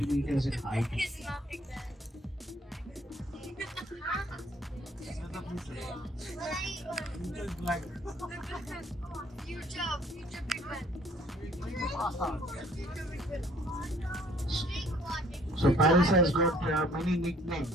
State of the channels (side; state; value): both; normal; correlation 0.59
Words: meters in height. So Paris has got many